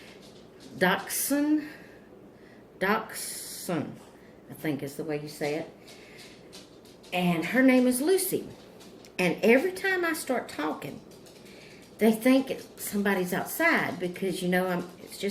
Dachshund, I think is the way you say it, and her name is Lucy. And every time I start talking, they think somebody's outside because, it's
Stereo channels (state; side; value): identical; both; correlation 1.00